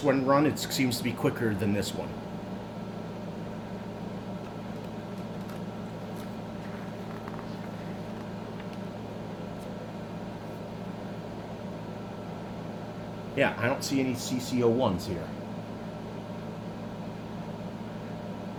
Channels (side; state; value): both; identical; correlation 1.00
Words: one run, it seems to be quicker than this one. Yeah, I don't see any CCO ones here.